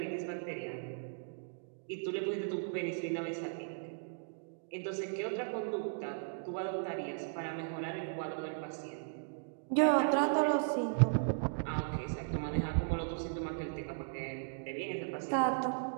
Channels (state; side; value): silent; left; digital silence